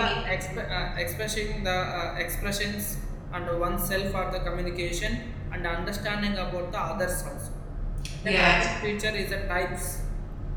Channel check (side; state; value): both; identical; correlation 1.00